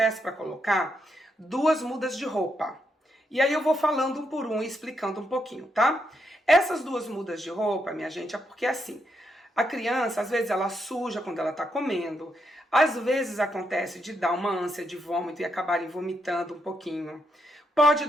para colocar 2 mudas de roupa. E aí eu vou falando um por um e explicando um pouquinho, tá? Essas 2 mudas de roupa, minha gente, é porque assim, a criança, às vezes, ela suja quando ela tá comendo. Às vezes acontece de dar uma ânsia de vômito e acabarem vomitando um pouquinho. Pode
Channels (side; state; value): both; normal; correlation 0.80